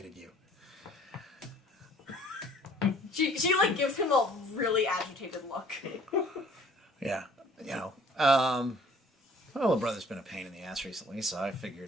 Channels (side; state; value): both; normal; correlation 0.55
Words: you. She like gives him a really agitated look. Yeah. You know. My little brother's been a pain in the ass recently, so I